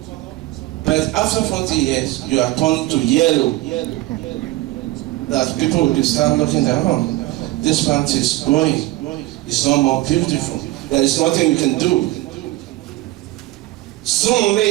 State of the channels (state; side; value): quieter; left; 17.9 dB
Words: But after 40 years, you are turning to yellow. That people will start looking at, oh, this plant is growing. It's not more beautiful. There is nothing you can do. Soon